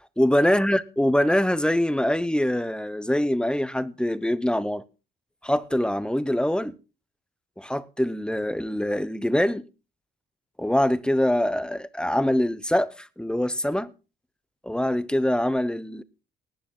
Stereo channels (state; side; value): normal; both; correlation 0.97